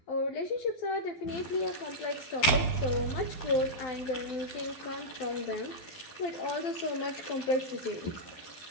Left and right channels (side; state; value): right; late; 11 ms